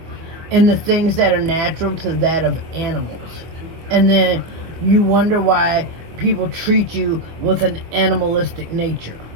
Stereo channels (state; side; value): late; left; 25 ms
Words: in the things that are natural to that of animals. And then you wonder why people treat you with an animalistic nature.